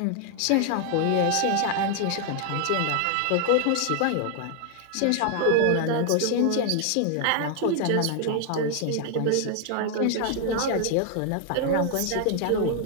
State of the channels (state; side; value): different; both; correlation 0.00